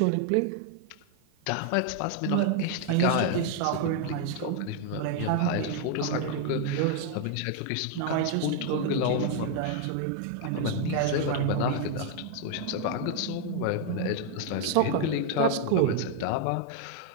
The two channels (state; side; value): different; both; correlation 0.00